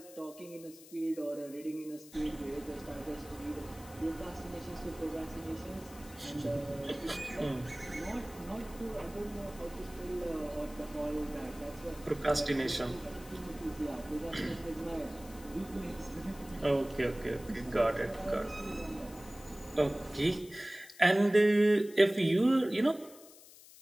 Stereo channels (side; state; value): left; noise; hiss, 20 dB below the sound